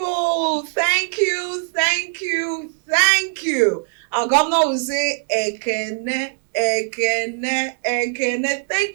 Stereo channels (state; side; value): silent; left; digital silence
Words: thank you. Our governor will say, Ekene, Ekene, Ekene.